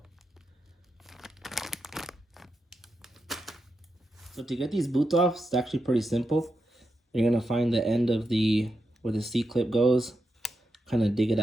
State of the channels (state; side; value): normal; both; correlation 0.87